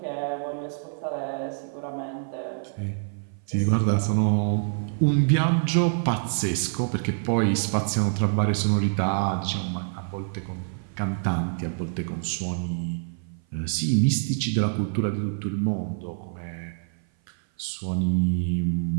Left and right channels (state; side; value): silent; left; 57 dB below the other